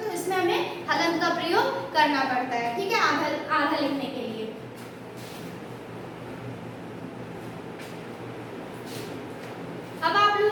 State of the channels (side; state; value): both; identical; correlation 1.00